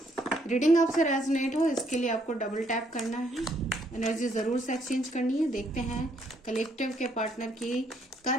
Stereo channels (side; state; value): both; normal; correlation 0.70